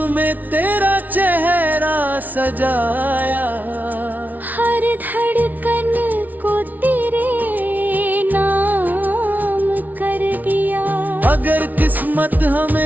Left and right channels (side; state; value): left; late; 0.078 ms